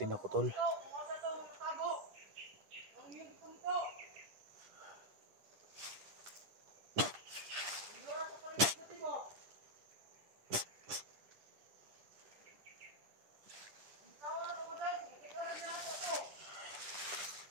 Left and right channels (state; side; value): late; left; 10 ms